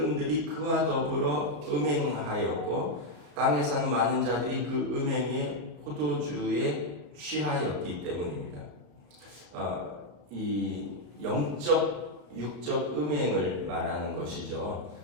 그와 더불어 음행하였고 땅에 사는 많은 자들이 그 음행의 포도주에 취하였기 때문입니다. 이 영적, 육적 음행을 말하는 것이죠.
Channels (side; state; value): left; late; 34 ms